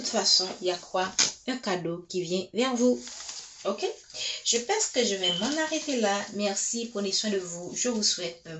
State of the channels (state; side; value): identical; both; correlation 1.00